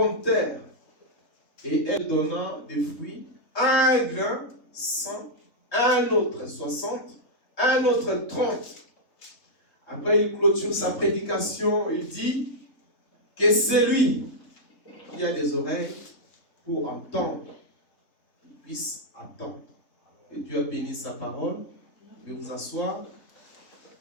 terre. Et elle donna des fruits, un grain, 100, un autre 60, un autre 30. Après, il clôture sa prédication. Il dit que c'est lui qui a des oreilles pour entendre, qu'il puisse attendre. Et Dieu a béni sa parole. Je vais vous asseoir.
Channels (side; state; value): right; late; 3.7 ms